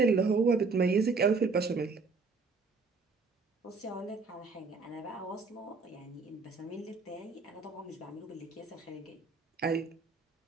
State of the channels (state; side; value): quieter; left; 4.3 dB